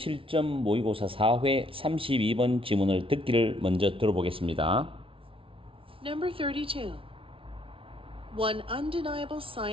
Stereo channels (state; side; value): late; left; 0.26 ms